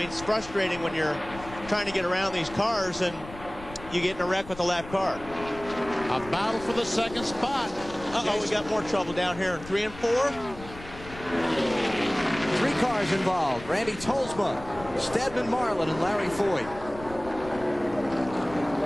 it's frustrating when you're trying to get around these cars and you get in a wreck with a lap car. A battle for the 2nd spot. Uh-oh, we got more trouble down here in 3 and 4. 3 cars involved. Randy Tolsma, Stedman Marlin, and Larry Foyt.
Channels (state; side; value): noise; left; rumble, 16 dB below the sound